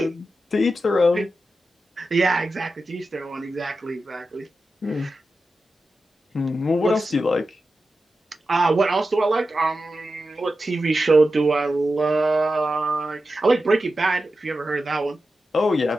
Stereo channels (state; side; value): normal; both; correlation 0.91